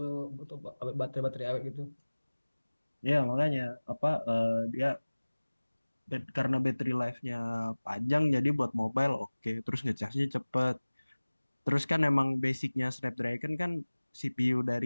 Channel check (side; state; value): both; inverted; correlation -1.00